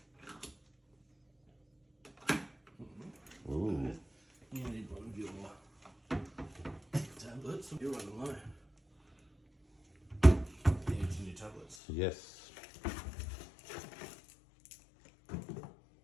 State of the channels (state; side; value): drops out; right; at 11.8 s